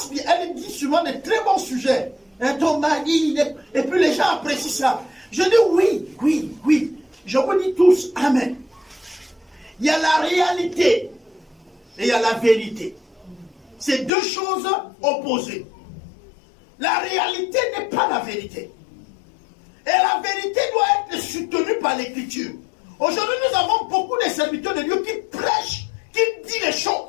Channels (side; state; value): right; drops out; at 14.1 s